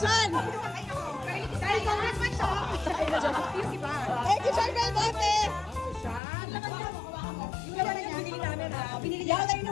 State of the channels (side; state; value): right; drops out; at 6.2 s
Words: Dahil congressman siya. Yung iba. Thank you, Sir Belmonte! Yung naman na binili namin ha. Hindi ako